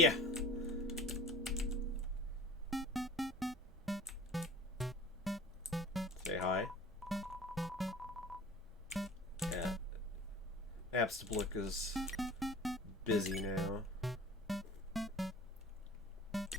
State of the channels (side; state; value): both; normal; correlation 0.42